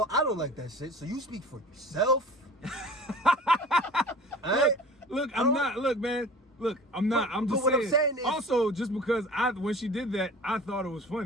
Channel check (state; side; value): normal; both; correlation 0.41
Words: I don't like that shit, so you speak for yourself. Alright? Look, I'm not. Look, man. Look, I'm not. I'm just but saying. what I'm saying is, also, just because when she did that, I thought it was